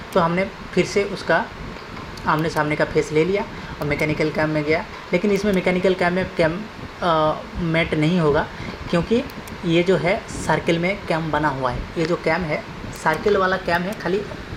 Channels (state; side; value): identical; both; correlation 1.00